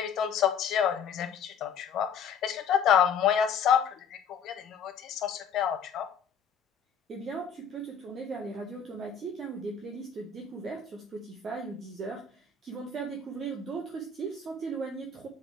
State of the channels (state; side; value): quieter; right; 6.3 dB